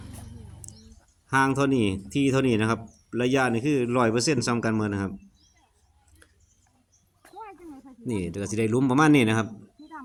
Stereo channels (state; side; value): identical; both; correlation 1.00